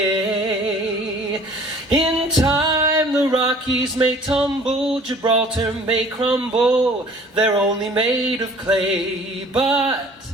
In time the Rockies may tumble, Gibraltar may crumble. They're only made of clay, but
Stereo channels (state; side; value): normal; both; correlation 0.50